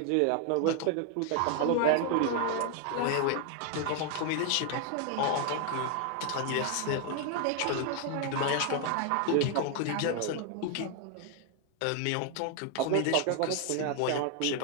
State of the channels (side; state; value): both; different; correlation 0.00